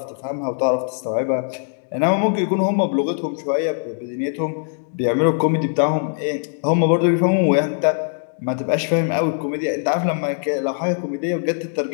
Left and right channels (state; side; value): silent; right; digital silence